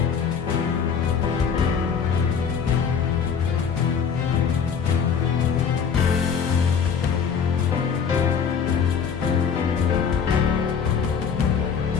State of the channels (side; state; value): right; quieter; 6.7 dB